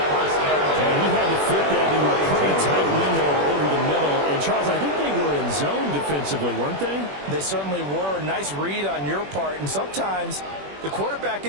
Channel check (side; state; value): left; late; 21 ms